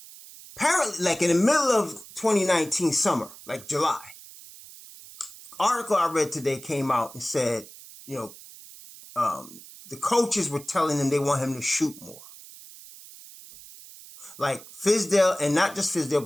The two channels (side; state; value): right; noise; hiss, 18 dB below the sound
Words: Apparently, like in the middle of 2019 summer, like July, article I read today came out and said, the coaches were telling him they want him to shoot more. Like Fizdale, and not just Fizdale,